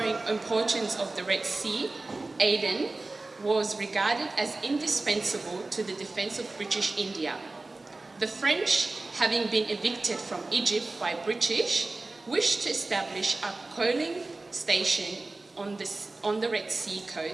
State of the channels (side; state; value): left; quieter; 3.2 dB